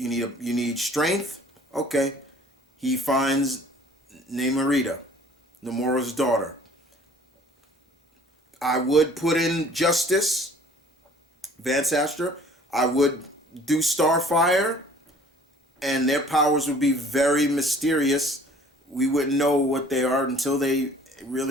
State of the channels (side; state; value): both; normal; correlation 0.53